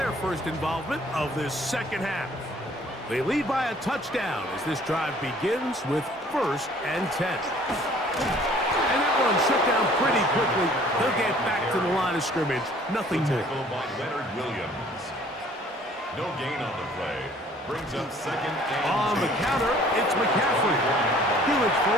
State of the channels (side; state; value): both; normal; correlation 0.55